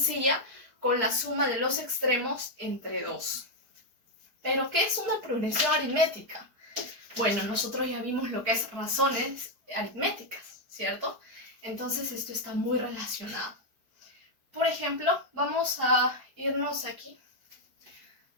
con la suma de los extremos entre 2. ¿Pero qué es una progresión aritmética? Bueno, nosotros ya vimos lo que es razones aritméticas, ¿cierto? Entonces esto está muy relacionado. Por ejemplo, vamos a irnos aquí.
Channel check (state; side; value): late; left; 4.7 ms